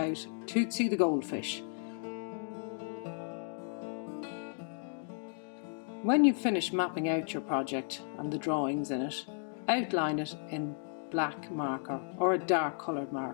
Tootsie the goldfish. When you've finished mapping out your project and the drawings in it, outline it in black marker or a dark coloured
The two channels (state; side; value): silent; right; 55 dB below the other